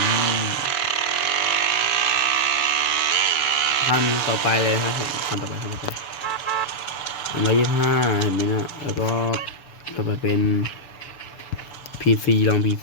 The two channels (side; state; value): right; late; 6.9 ms